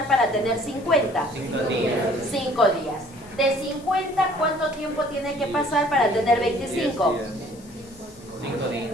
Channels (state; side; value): noise; left; hiss, 24 dB below the sound